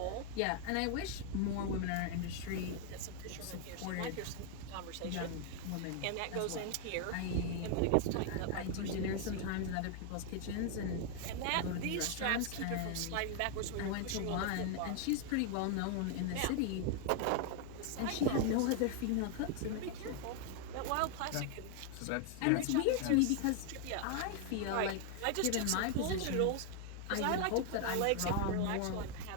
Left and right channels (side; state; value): both; different; correlation 0.00